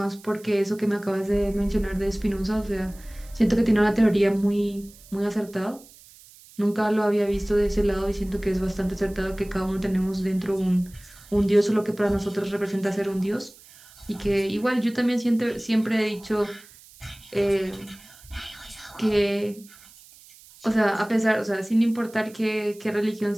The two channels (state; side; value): noise; right; hiss, 23 dB below the sound